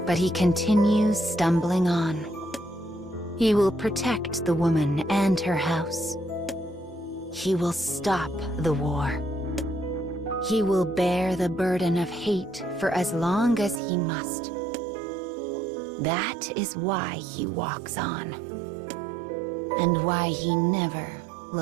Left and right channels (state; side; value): drops out; left; at 13.8 s